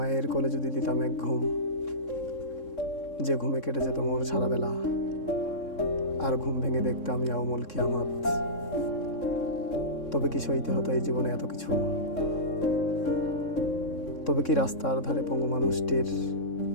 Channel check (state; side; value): late; right; 3.6 ms